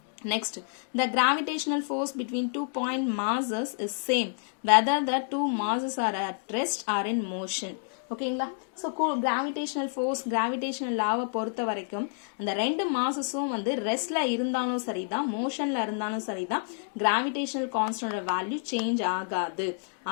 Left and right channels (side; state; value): right; silent; digital silence